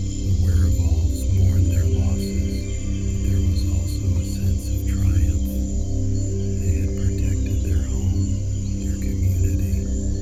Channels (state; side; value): identical; both; correlation 1.00